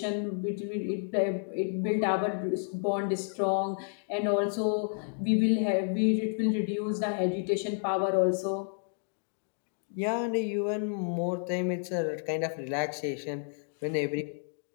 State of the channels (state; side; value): silent; right; digital silence